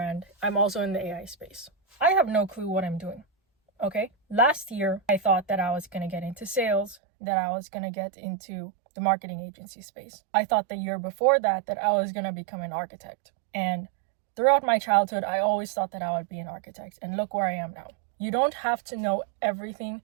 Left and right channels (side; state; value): left; drops out; at 7.0 s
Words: I'm also in the AI space. I have no clue what I'm doing. Okay? Last year, I thought that I was going to get into sales, that I was going to get into the marketing agency space. I thought the year before that I was going to become an architect. And throughout my childhood, I always thought that I would be an architect. And look where I am now. You don't have to know everything